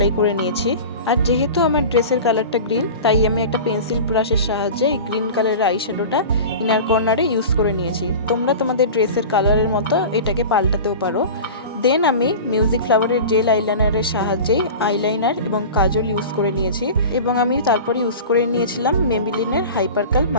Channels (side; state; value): both; inverted; correlation -0.33